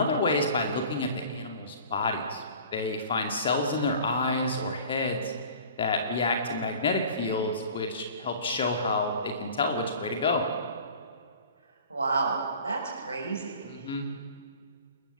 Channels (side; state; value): both; inverted; correlation -0.44